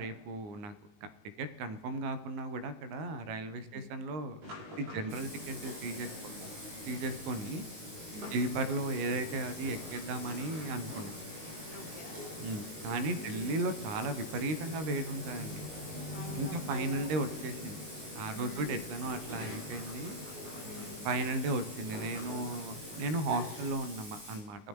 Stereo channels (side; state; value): left; late; 19 ms